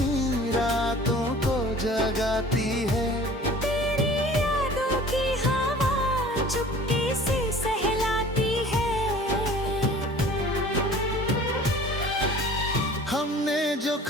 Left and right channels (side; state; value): both; normal; correlation 0.46